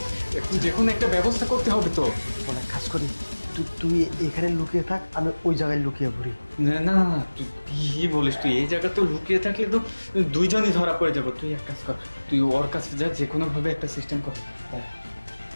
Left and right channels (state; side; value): inverted; both; correlation -1.00